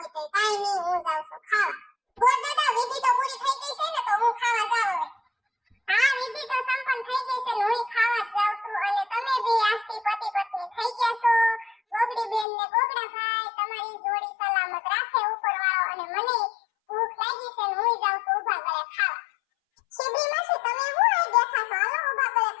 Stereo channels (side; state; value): right; drops out; at 12.5 s